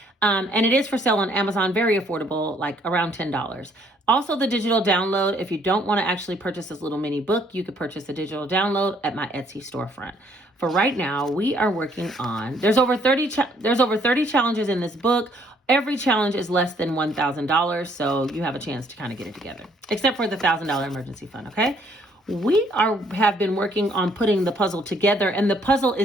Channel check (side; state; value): both; normal; correlation 0.65